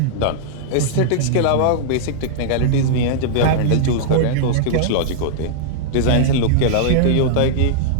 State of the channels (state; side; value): different; both; correlation -0.02